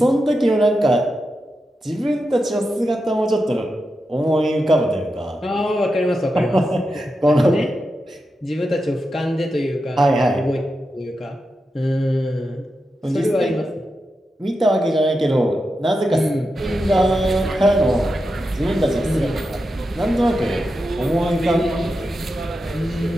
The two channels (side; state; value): both; normal; correlation 0.89